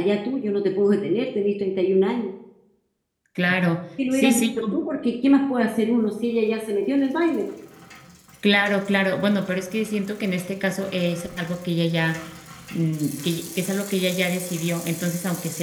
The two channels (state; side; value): identical; both; correlation 1.00